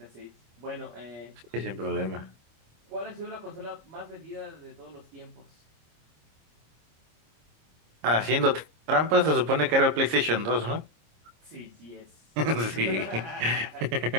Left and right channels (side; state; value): left; late; 26 ms